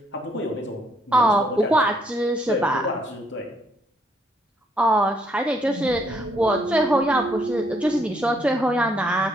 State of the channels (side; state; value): both; normal; correlation 0.70